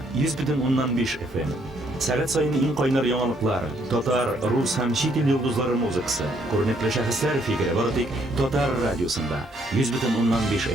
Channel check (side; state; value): both; normal; correlation 0.69